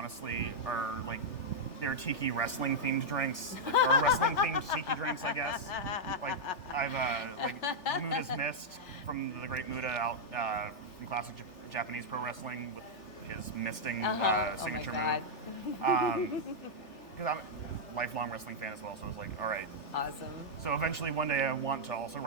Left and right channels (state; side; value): late; right; 3.4 ms